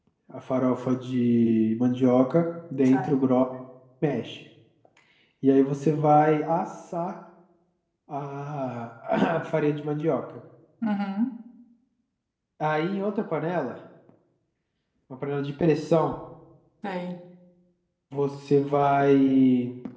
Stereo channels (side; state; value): both; identical; correlation 1.00